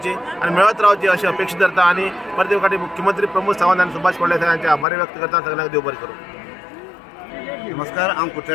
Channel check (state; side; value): drops out; right; at 4.9 s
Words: आनी मेळत रावची अशी अपेक्षा धरता. आनी प्रत्येक फावटी मुख्यमंत्री प्रमोद सावंत आनी सुभाष फळदेसाय हांचे आभार व्यक्त करता. सगळ्यांक देव बरें करूं. नमस्कार, हांव